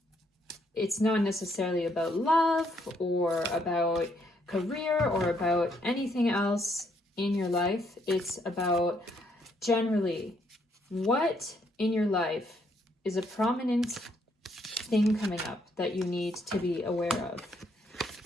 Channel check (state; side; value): normal; both; correlation 0.72